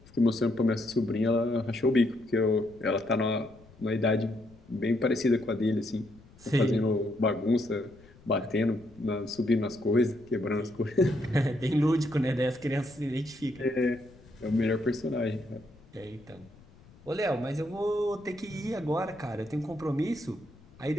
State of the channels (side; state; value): left; noise; rumble, 24 dB below the sound